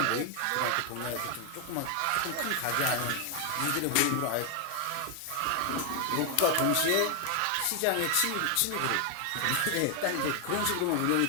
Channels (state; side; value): different; both; correlation 0.00